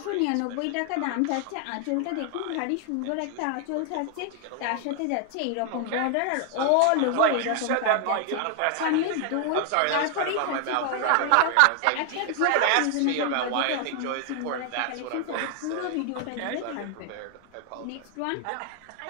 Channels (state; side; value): different; both; correlation 0.00